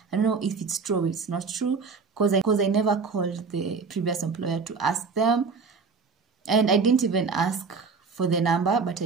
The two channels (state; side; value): quieter; left; 4.9 dB